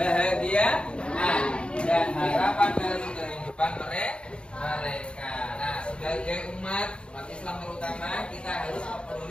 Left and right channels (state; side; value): late; right; 0.056 ms